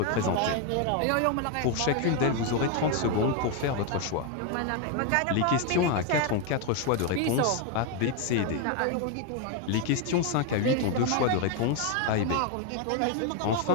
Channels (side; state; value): both; different; correlation 0.01